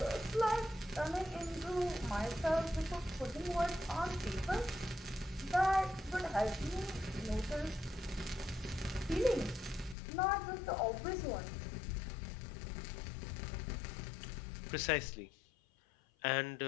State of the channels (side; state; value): right; drops out; at 10.0 s